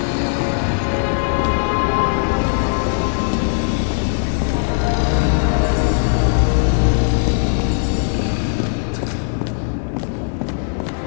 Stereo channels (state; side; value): silent; right; digital silence